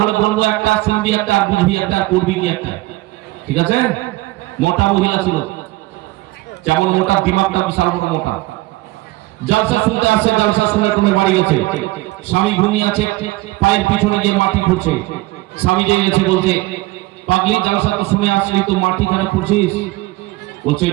হলে বলবো একটা, শুনবি একটা, আর বুঝবি একটা, করবি কি একটা, ঠিক আছে? মোটা মহিলা ছিল, যেমন মোটা দিমাগটা বিশাল বড় মোটা। জলসা শুনতে আসে, জলসা শুনে তুমি বাড়ি গেছে, স্বামী ঘুমিয়ে আছে, পায়ের পিছনে গিয়ে মাটি খুঁড়ছে, স্বামী জেগে গেছে, বলছে পাগলি জলসা তো শুনে আসলি, তো মাটি কেন খুঁড়ছিস? বলছে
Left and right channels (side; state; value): left; quieter; 20.1 dB